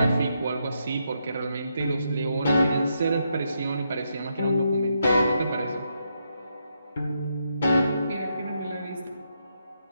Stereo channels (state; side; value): inverted; both; correlation -0.80